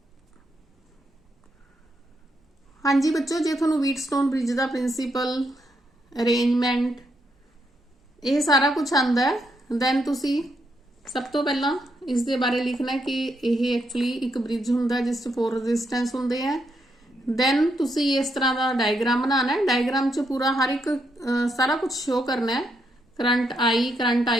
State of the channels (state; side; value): normal; both; correlation 0.79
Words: हाँ जी बच्चों, जे तुहानूं व्हीटस्टोन ब्रिज का प्रिंसीपल, अरेंजमेंट, ये सारा कुछ आंदा है, दैन तुसी सब तो पहला इस दे बारे लिखना है कि यह एक्चुअली एक ब्रिज हुंदा जिस 4 रेजिस्टेंस हुंदे हैं। दैन तुसी इस तरह का डायग्राम बनाना है। डायग्राम च पूरा हर एक सारा कुछ शो करना है। करंट